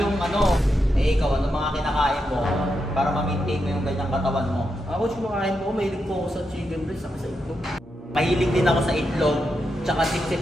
yung Eh ikaw, ano mga kinakain mo para ma-maintain mo yung ganyang katawan mo? Coach, kumakain ko, mahilig po ako sa chicken breast, saka sa itlog. Mahilig din ako sa itlog, tsaka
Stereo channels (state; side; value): normal; both; correlation 0.85